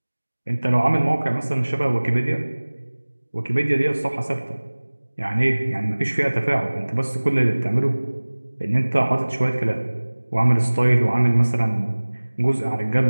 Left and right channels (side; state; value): both; inverted; correlation -1.00